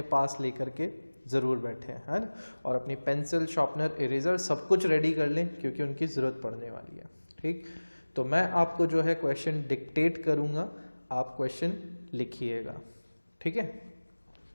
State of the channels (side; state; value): both; inverted; correlation -1.00